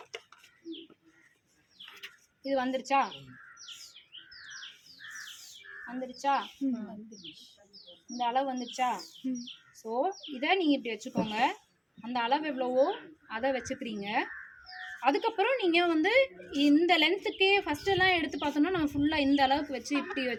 இது வந்துருச்சா? இந்த அளவு வந்துருச்சா? ஸோ இதை நீங்கள் இப்படி வச்சுக்கோங்க. அந்த அளவு எவ்வளவோ அதை வச்சுக்கிறீங்க. அதுக்கப்புறம் நீங்கள் வந்து இந்த லென்த்துக்கே ஃபஸ்ட்டெல்லாம் எடுத்து பார்த்தோம்னா நம்ம ஃபுல்லாக இந்த அளவுக்கு வச்சு இப்படி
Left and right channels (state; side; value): identical; both; correlation 1.00